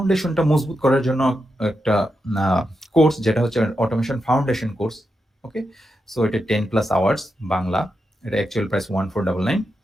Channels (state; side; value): normal; both; correlation 0.86